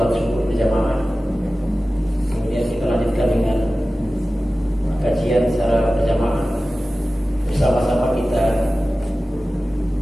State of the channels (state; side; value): normal; both; correlation 0.96